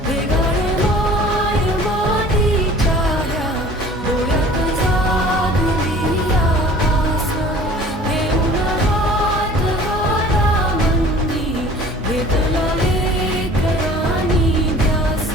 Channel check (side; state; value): both; normal; correlation 0.47